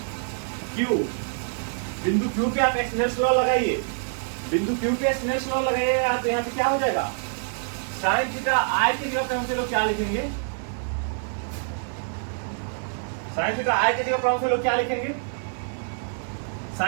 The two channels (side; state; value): left; silent; 61 dB below the other